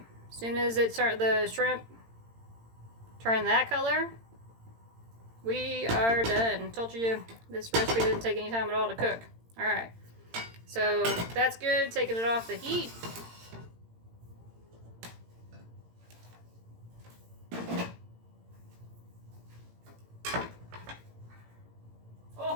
as soon as the shrimp turn that color, we are done. Told you this recipe didn't take any time at all to cook. Alright, so that's good. Taking it off the heat.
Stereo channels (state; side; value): late; left; 18 ms